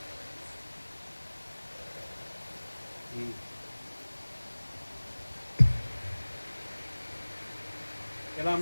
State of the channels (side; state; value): both; inverted; correlation -1.00